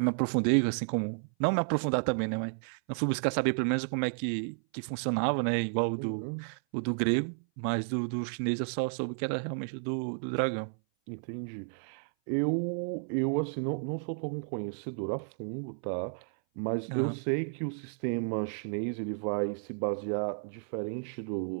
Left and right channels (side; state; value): left; silent; 56 dB below the other